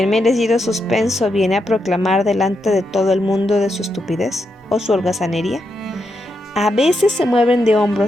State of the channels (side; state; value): both; normal; correlation 0.83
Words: merecido suspenso viene a proclamar delante de todo el mundo de su estupidez o su holgazanería, a veces se mueven de